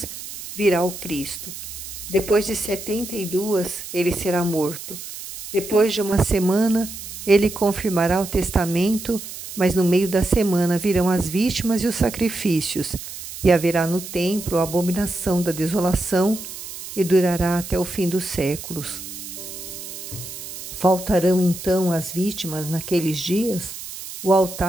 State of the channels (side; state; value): right; noise; hiss, 11 dB below the sound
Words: virá o Cristo. Depois de 72, ele será morto. Depois de 1 semana, ele confirmará o testamento, mas no meio da semana virão as vítimas e os sacrifícios, e haverá no templo a abominação da desolação, e durará até o fim dos séculos. Faltarão então as vítimas naqueles dias? O